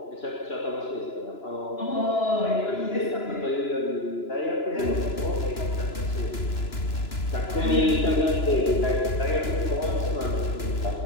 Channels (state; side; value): late; right; 2.9 ms